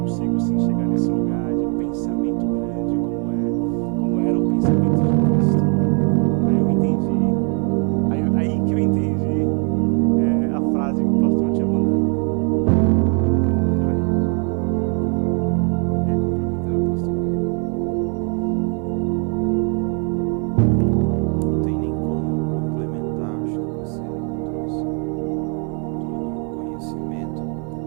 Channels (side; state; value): left; quieter; 37.5 dB